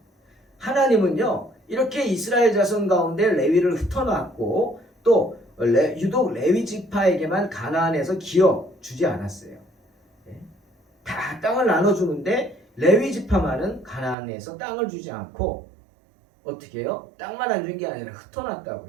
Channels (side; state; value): left; drops out; at 14.2 s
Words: 하나님은요 이렇게 이스라엘 자손 가운데 레위를 흩어놨고 또 유독 레위 지파에게만 가나안에서 기어 주지 않았어요. 다 땅을 나눠주는데 레위 지파만은 가나안에서 땅을 주지 않고 어떻게 해요? 땅만 안 준 게 아니라